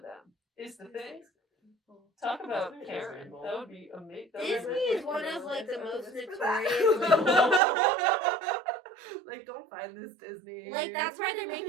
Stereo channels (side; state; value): left; drops out; at 7.6 s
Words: Is the thing. Talk about Disney is Karen. evil. That would be amazing. Disney is one of like the most notorious. Like, don't find this Disney. Like that's why they're